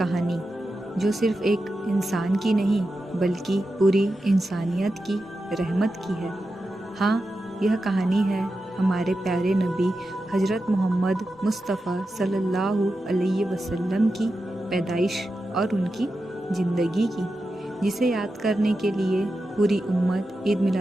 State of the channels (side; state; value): both; normal; correlation 0.90